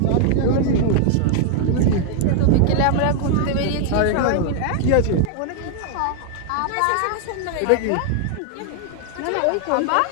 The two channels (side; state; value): both; different; correlation 0.00